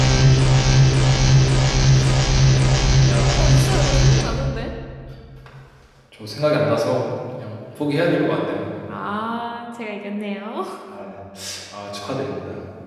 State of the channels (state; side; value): identical; both; correlation 1.00